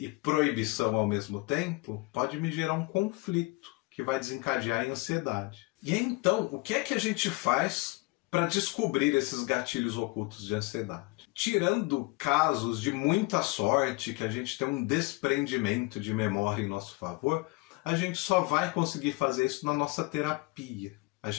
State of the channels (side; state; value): right; quieter; 24.4 dB